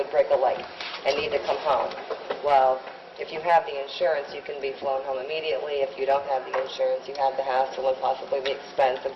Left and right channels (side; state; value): both; identical; correlation 1.00